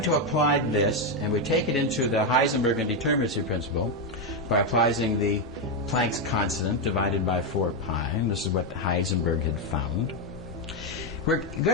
to apply this, and we take it into the Heisenberg indeterminacy principle by applying the Planck's constant divided by 4 pi, and this is what Heisenberg had found, we're going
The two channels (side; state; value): both; normal; correlation 0.05